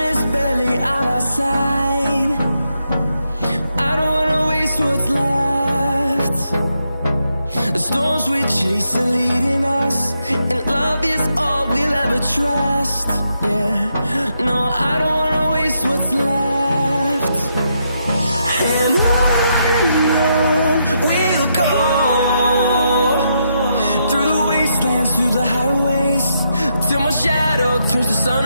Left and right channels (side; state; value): both; inverted; correlation -0.80